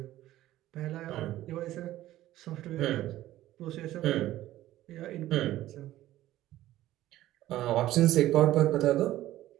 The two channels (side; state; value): left; quieter; 14.7 dB